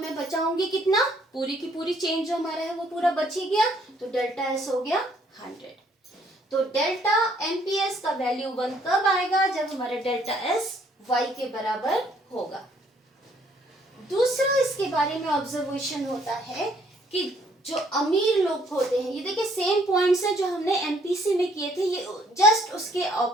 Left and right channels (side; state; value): both; normal; correlation 0.65